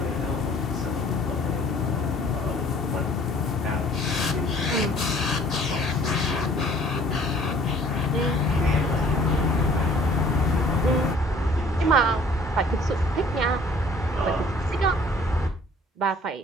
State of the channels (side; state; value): both; normal; correlation 0.55